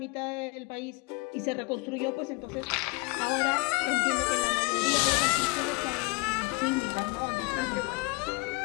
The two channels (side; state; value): right; quieter; 25.8 dB